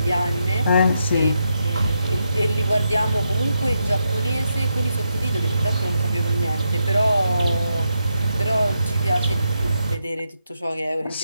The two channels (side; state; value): both; inverted; correlation -0.83